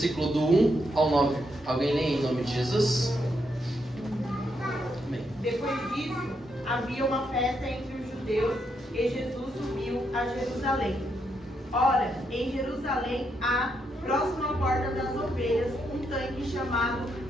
do 1 ao 9. Alguém lê em nome de Jesus? Amém. Depois disso, havia uma festa entre os judeus e Jesus subiu a Jerusalém. Ora, em Jerusalém há, próximo à porta das ovelhas, um tanque chamado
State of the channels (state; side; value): normal; both; correlation 0.79